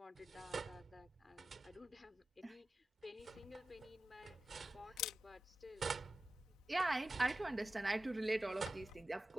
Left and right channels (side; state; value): both; normal; correlation 0.94